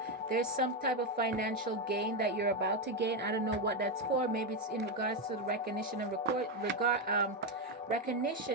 There's some type of financial gain that you're about to gain. I don't know what that's for. Maybe it's in regards to the recognition and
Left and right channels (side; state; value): both; normal; correlation 0.07